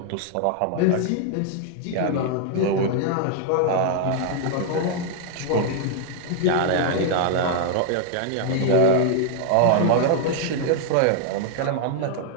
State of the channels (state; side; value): different; both; correlation 0.00